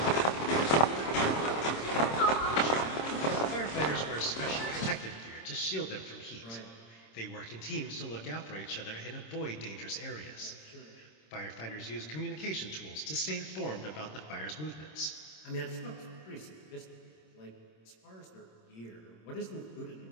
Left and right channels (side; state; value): right; late; 26 ms